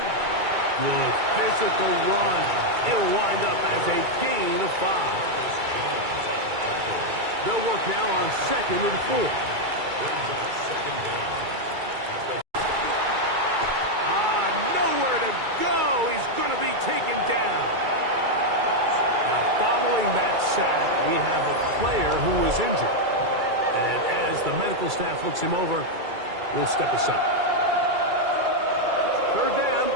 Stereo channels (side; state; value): left; late; 2.3 ms